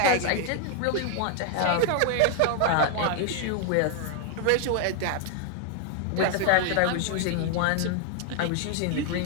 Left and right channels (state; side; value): different; both; correlation 0.00